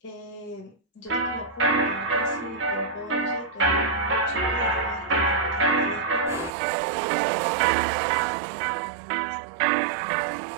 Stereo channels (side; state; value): left; drops out; at 6.5 s